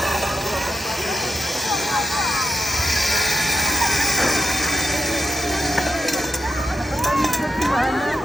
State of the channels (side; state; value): both; normal; correlation 0.85